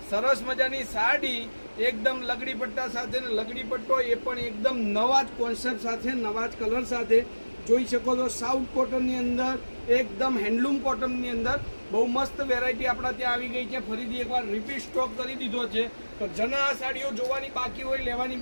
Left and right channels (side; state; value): both; inverted; correlation -1.00